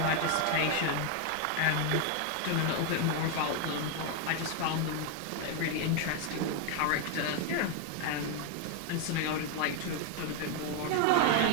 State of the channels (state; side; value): different; both; correlation 0.01